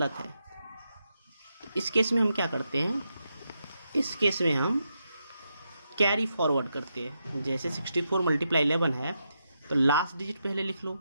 है। इस केस में हम क्या करते हैं, इस केस में हम कैरी फॉरवर्ड करते हैं। जैसे 64 मल्टीप्लाई 11 है तो लास्ट डिजिट पहले लिख लो,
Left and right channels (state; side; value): inverted; both; correlation -0.84